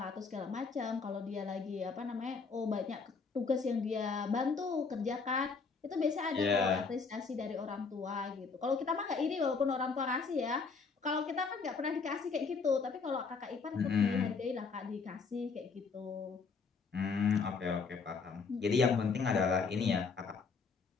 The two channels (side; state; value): right; quieter; 4.9 dB